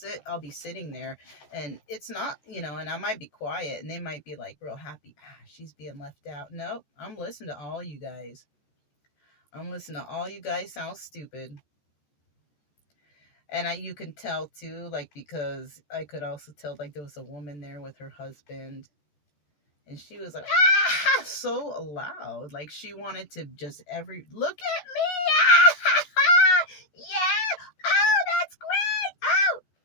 be sitting there, and it's not, and I might be quiet, and they might be like real happy. She's being left out. Nope, I'm listening to all you guys. I'm listening to all you guys sound stupid. And you can tell too, like, because I could also tell, like, there was a woman there with her husband, and she was like, ah, so loud. Like, she wanted to just look at me. Yeah. Oh, that's great. Oh.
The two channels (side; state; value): right; late; 14 ms